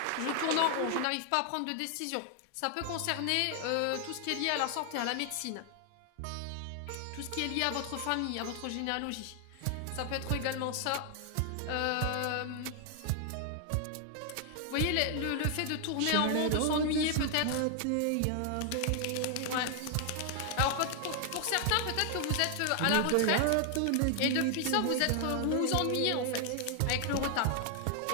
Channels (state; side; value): different; both; correlation 0.00